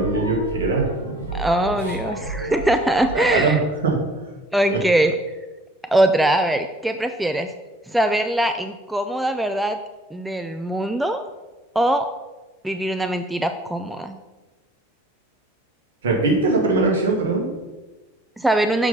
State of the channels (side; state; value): both; normal; correlation 0.54